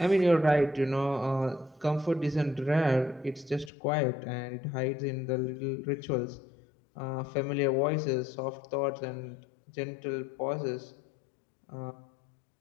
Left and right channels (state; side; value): drops out; right; at 3.7 s